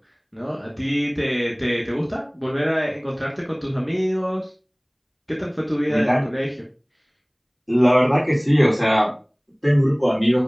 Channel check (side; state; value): both; identical; correlation 1.00